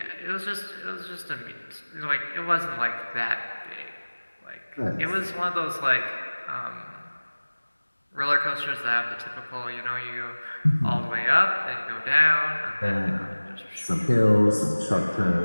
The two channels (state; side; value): inverted; both; correlation -1.00